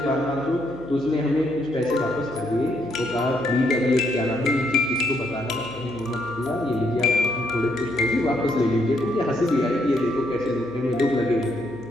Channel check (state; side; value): normal; both; correlation 0.74